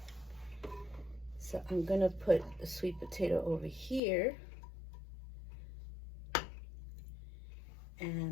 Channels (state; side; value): drops out; right; at 4.0 s